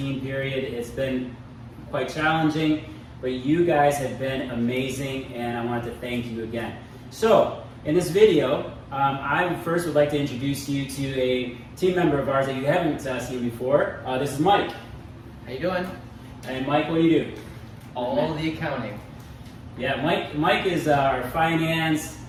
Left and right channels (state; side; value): identical; both; correlation 1.00